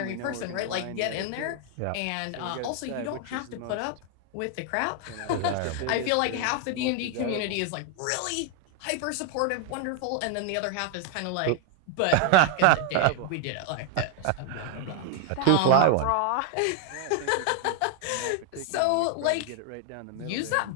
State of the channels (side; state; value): both; different; correlation 0.00